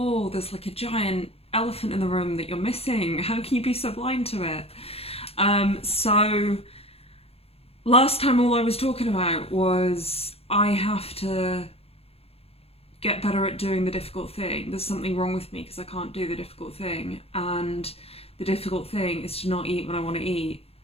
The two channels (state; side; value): late; right; 0.29 ms